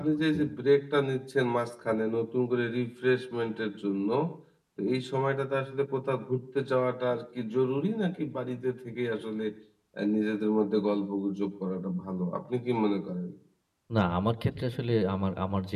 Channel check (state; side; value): identical; both; correlation 1.00